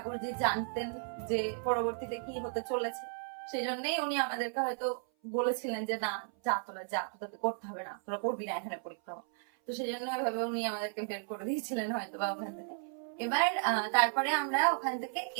জানতেন যে পরবর্তীতে কি হতে চলেছে, সেই জন্যই উনি আমাদেরকে হয়তো বলেছিলেন যে না, যা তোরা যা, তোদের করতে হবে না, তোরা করবি না এখানে পরিক্রমা। তো সেই জন্য ওইভাবে উনি আমাদেরকে বের করে দিয়েছিলেন হয়তো বা ওখান থেকে। এবার তারপরে আমরা ওখান থেকে,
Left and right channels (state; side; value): silent; left; 55 dB below the other